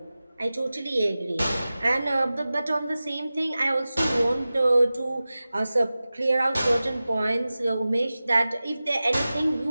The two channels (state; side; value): inverted; both; correlation -0.96